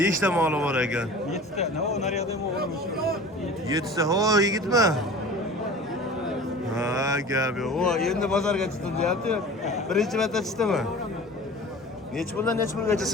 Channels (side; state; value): both; normal; correlation 0.39